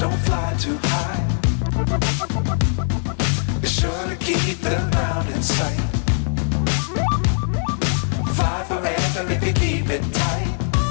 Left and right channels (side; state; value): right; silent; digital silence